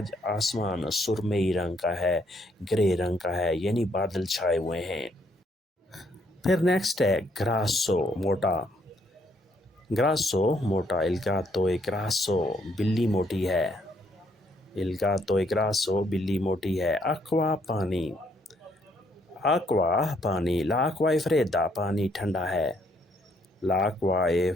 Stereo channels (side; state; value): both; normal; correlation 0.70